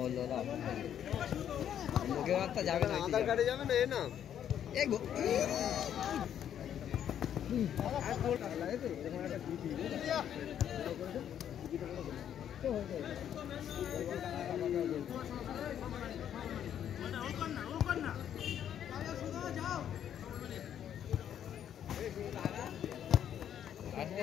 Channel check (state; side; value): quieter; right; 9.7 dB